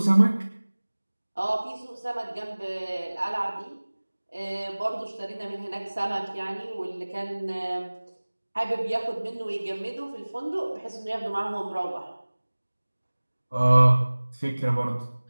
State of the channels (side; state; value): both; inverted; correlation -1.00